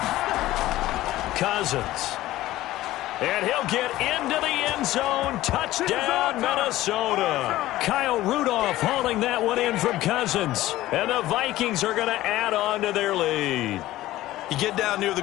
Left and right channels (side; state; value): right; quieter; 15.9 dB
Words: Cousins. And he'll get into the end zone. Touchdown, Minnesota. Kyle Rudolph hauling that one in from Cousins. And the Vikings are going to add on to their lead. You get down near the